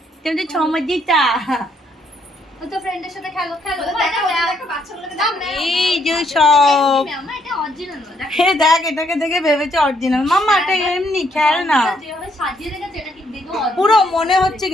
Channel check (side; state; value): both; normal; correlation 0.71